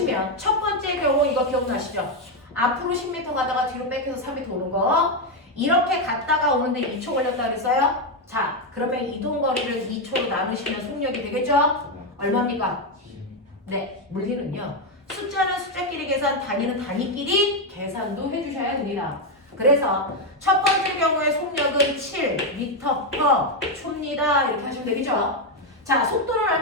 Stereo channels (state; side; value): normal; both; correlation 0.05